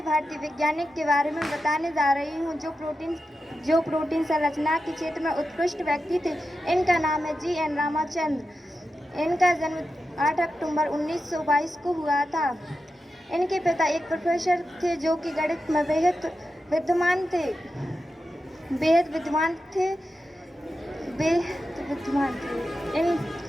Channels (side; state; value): both; normal; correlation 0.90